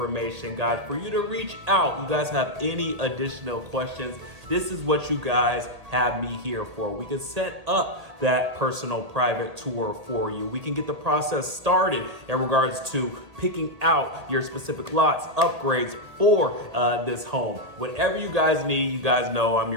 guys, for you to reach out. You guys have any additional questions, this is what you guys have me here for. We can set up that personal private tour for you. We can get the process started in regards to picking out your specific lots, upgrades for this home. Whatever you guys need, you guys know I'm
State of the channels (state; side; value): late; left; 1.8 ms